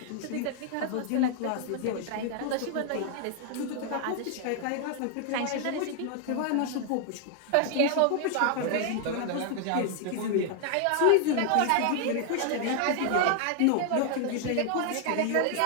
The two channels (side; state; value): both; different; correlation 0.00